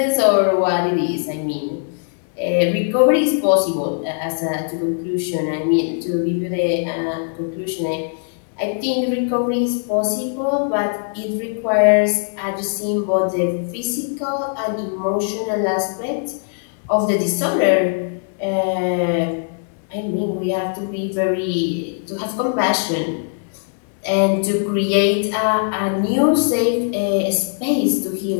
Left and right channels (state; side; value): silent; right; 62 dB below the other